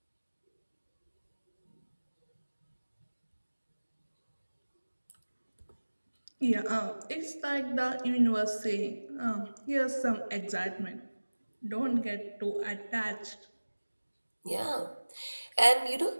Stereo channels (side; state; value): both; inverted; correlation -1.00